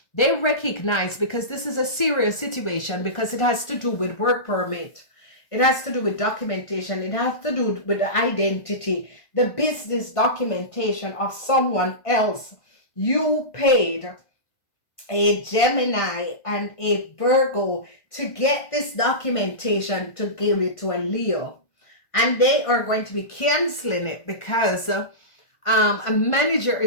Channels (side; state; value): right; late; 1.5 ms